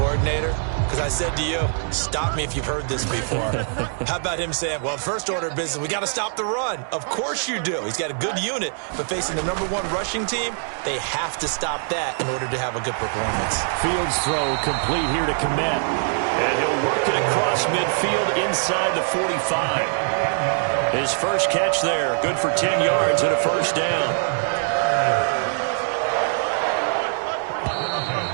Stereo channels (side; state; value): left; silent; 63 dB below the other